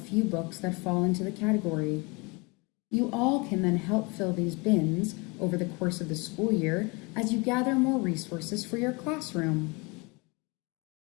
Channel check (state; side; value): quieter; right; 28.1 dB